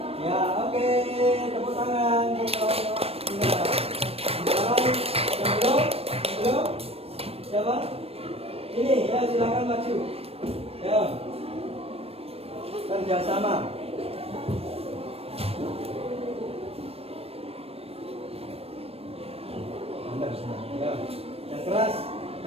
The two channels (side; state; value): left; late; 0.28 ms